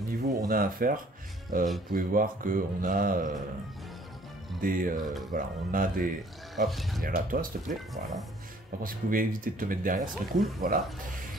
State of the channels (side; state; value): both; normal; correlation 0.57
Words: niveau on a à faire. Vous pouvez voir qu'on a voilà, on a des... Hop, viens là toi s'il te plaît, voilà. Par contre si vous pouvez éviter de te mettre derrière, ce serait cool, voilà.